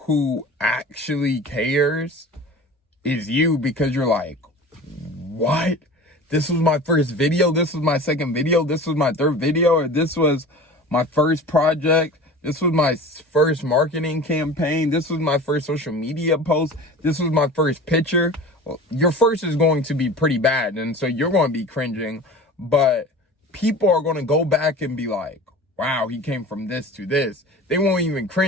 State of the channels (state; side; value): normal; both; correlation 0.37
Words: actually cares is you, because you're like, what? This was my first video, this was my second video, this was my third video, or this was my first project, this was my first marketing campaign, this was my first social media post, this was my first picture. Well, your first is going to be pretty bad, and so you're going to be cringing, but people are going to go back and be like, wow, he came from this to this. They won't even